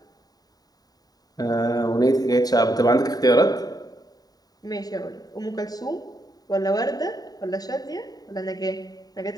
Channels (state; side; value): late; right; 0.18 ms